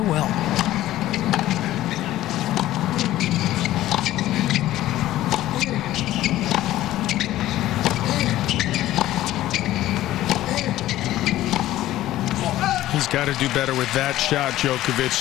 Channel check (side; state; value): right; quieter; 14.7 dB